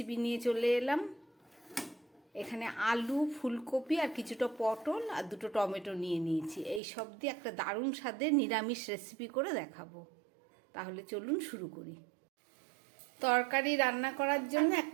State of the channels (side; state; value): left; drops out; at 6.8 s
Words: নিয়ে চলে এলাম। এখানে আলু, ফুলকপি আর কিছুটা পটল আর দুটো টমেটো নিয়ে নিয়েছি। এই সব দিয়ে একটা দারুণ স্বাদের নিরামিষ রেসিপি করে দেখাবো। তাহলে চলুন শুরু করি। তরকারি রান্না করার জন্য